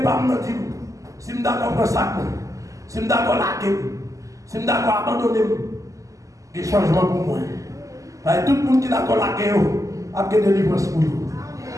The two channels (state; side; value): late; left; 0.16 ms